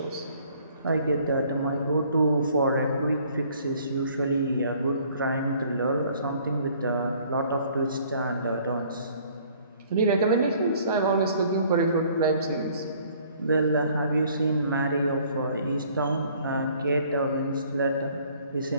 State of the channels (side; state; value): both; inverted; correlation -0.58